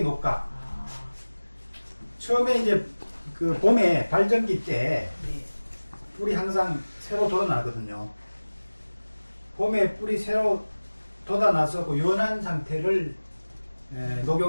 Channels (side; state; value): both; inverted; correlation -1.00